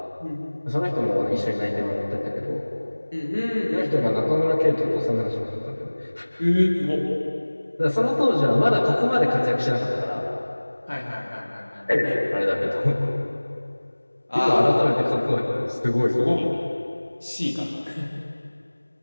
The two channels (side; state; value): both; inverted; correlation -1.00